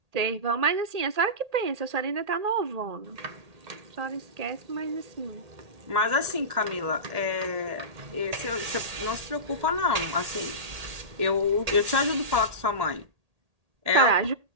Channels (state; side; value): late; left; 1.8 ms